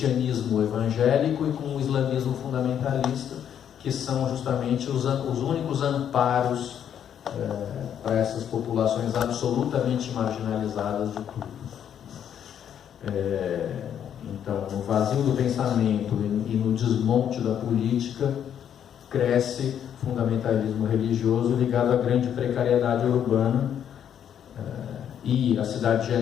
evangélico e com o islamismo fundamentalista, que são justamente os únicos amparos para essas populações absolutamente marginalizadas de tudo. Então, no vazio do pensamento e no desmonte da política, cresce fundamentalismo religioso ligado à grande precariedade urbana, e a cidade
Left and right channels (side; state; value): right; quieter; 9.2 dB